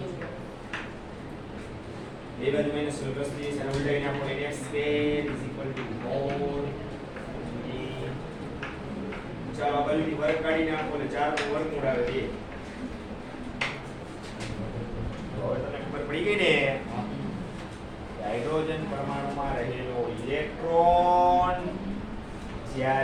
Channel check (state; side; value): identical; both; correlation 1.00